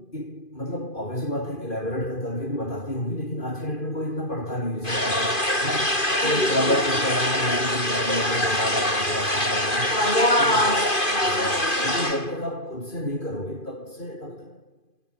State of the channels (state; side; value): late; right; 2.5 ms